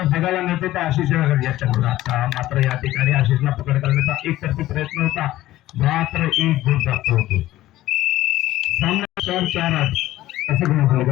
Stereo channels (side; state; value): right; quieter; 15.3 dB